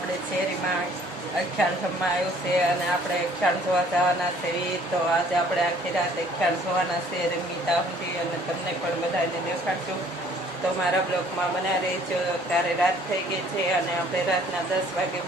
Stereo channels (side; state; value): both; normal; correlation 0.57